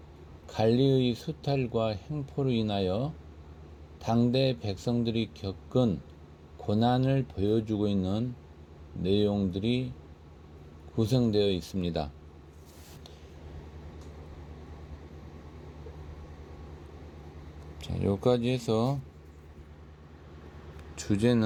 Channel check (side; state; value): both; identical; correlation 1.00